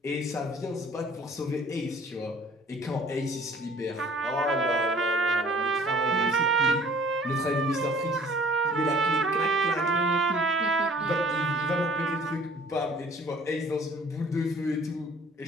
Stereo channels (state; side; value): normal; both; correlation 0.53